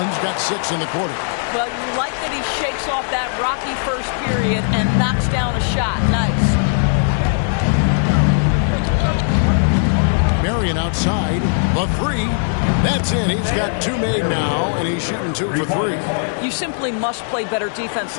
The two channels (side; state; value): right; silent; digital silence